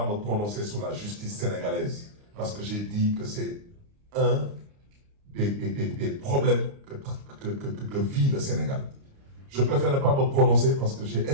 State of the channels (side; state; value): left; late; 29 ms